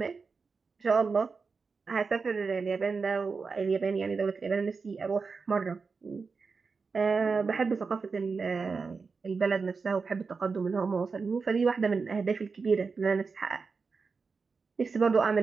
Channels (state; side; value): quieter; left; 4.8 dB